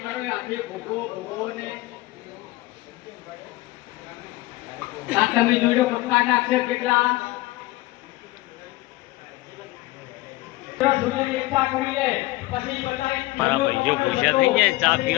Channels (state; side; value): quieter; right; 19.5 dB